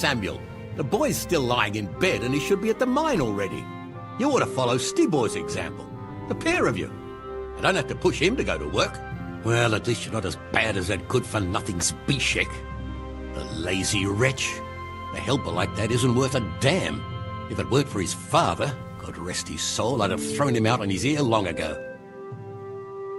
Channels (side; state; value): both; identical; correlation 1.00